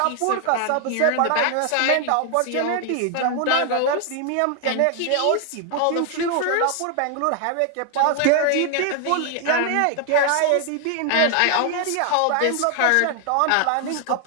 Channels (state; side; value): different; both; correlation 0.00